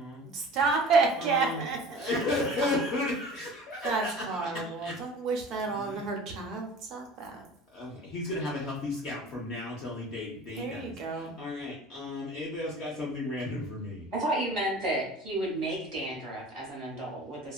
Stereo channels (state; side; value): normal; both; correlation 0.42